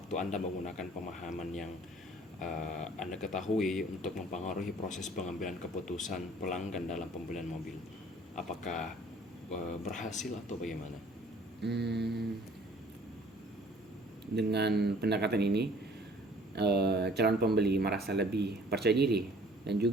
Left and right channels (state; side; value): normal; both; correlation 0.54